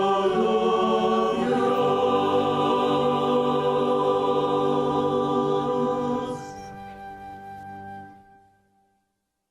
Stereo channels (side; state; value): both; identical; correlation 1.00